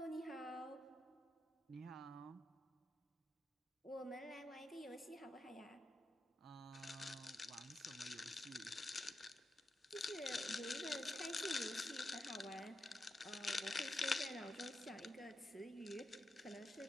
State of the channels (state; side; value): normal; both; correlation 0.87